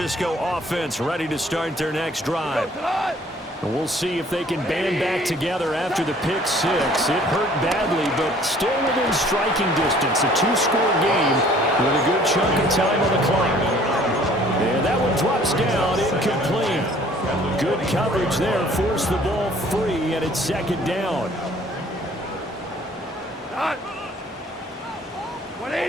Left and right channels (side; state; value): both; normal; correlation 0.56